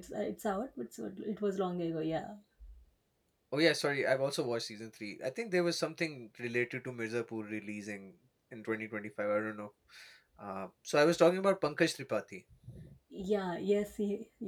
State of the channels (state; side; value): identical; both; correlation 1.00